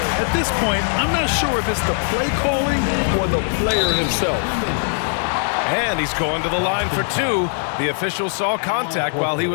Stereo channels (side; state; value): right; silent; 59 dB below the other